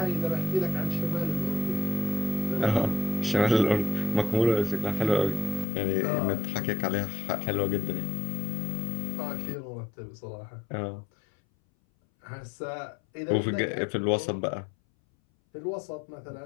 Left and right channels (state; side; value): drops out; right; at 5.7 s